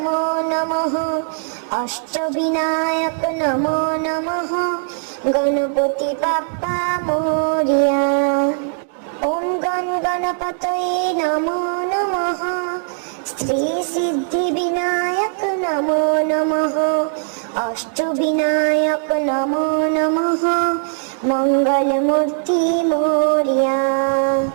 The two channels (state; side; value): silent; left; digital silence